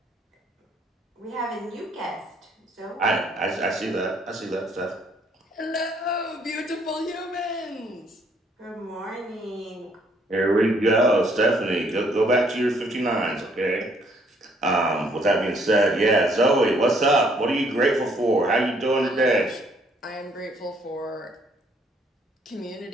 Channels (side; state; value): both; normal; correlation 0.65